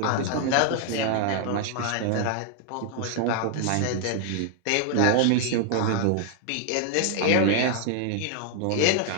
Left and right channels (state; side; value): different; both; correlation 0.00